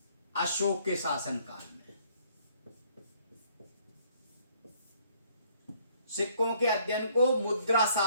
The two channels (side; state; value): both; inverted; correlation -0.64